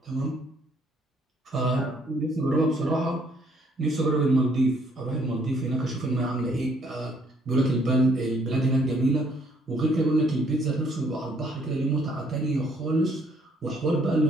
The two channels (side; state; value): both; normal; correlation 0.65